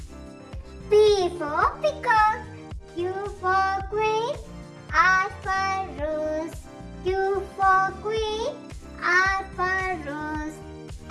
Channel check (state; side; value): identical; both; correlation 1.00